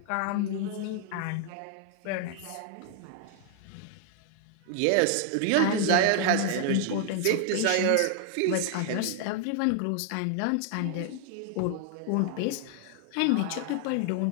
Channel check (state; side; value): different; both; correlation 0.00